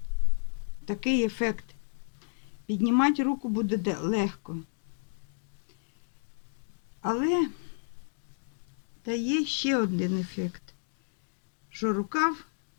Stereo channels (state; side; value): silent; right; digital silence